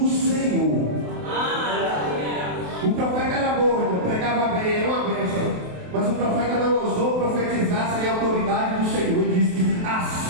Senhor. O profeta era bom, pregava bem, era uma bênção. Mas o profeta não ousou profetizar sem a autoridade do Senhor. Ele disse:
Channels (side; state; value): left; late; 28 ms